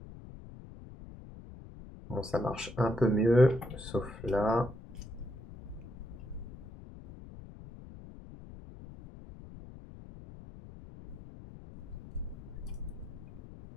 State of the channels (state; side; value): noise; left; rumble, 15 dB below the sound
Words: Bon, ça marche un peu mieux, sauf là.